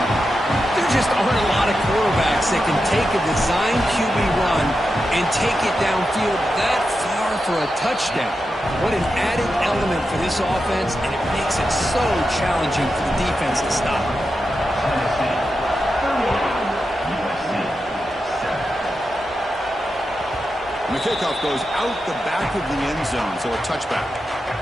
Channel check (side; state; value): both; normal; correlation 0.89